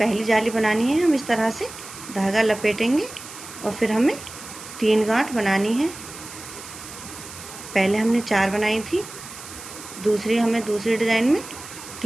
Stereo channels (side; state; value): right; noise; hiss, 14 dB below the sound